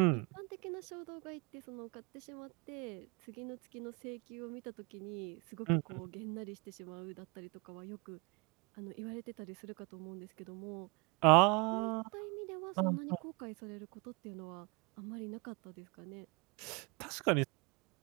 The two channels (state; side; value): quieter; left; 29.2 dB